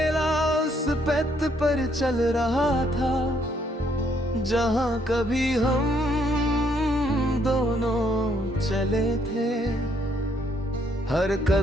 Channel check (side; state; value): both; normal; correlation 0.70